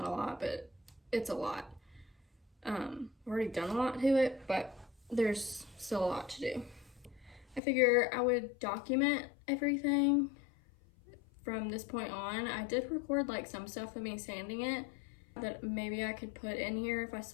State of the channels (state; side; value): drops out; right; at 7.6 s